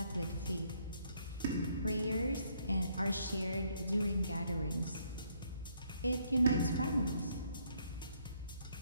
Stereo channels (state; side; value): inverted; both; correlation -0.70